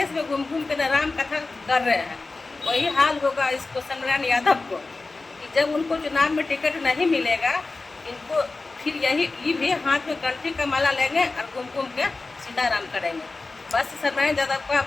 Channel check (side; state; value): right; quieter; 3.6 dB